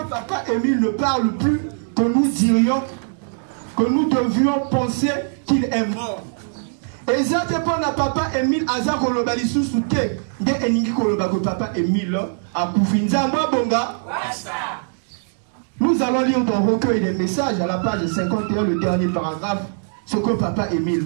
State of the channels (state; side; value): silent; left; digital silence